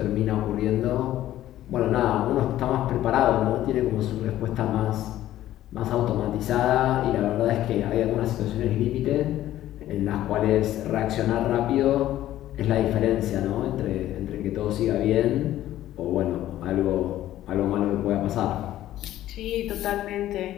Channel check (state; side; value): quieter; right; 13.6 dB